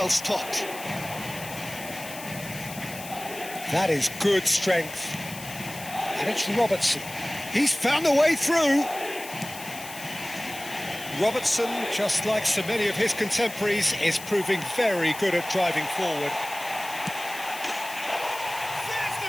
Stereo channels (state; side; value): noise; left; hiss, 13 dB below the sound